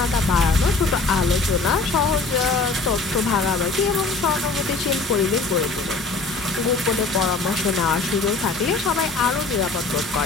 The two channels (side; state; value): right; quieter; 3.8 dB